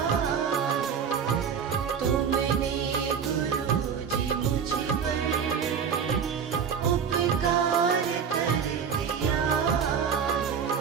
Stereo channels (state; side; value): quieter; left; 7.0 dB